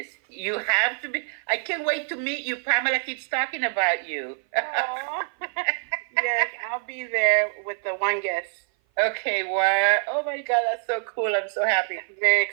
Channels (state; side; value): silent; left; 56 dB below the other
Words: You have to be. I can't wait to meet you. Pamela keeps talking about you. Yes, I'll be there with the one guest. Okay, wow. Oh my God, that's so cool. I'm so happy. Very